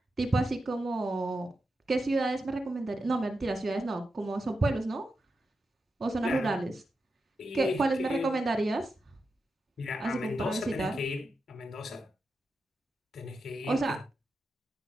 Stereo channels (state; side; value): normal; both; correlation 0.88